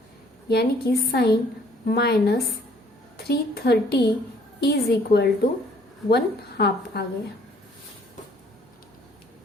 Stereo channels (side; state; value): both; normal; correlation 0.60